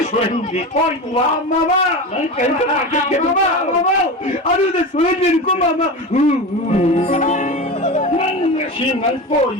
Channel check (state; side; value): normal; both; correlation 0.25